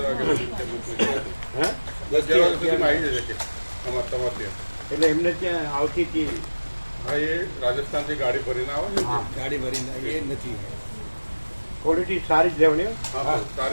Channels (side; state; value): both; inverted; correlation -1.00